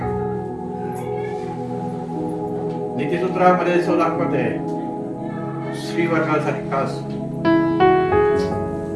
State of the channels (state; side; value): identical; both; correlation 1.00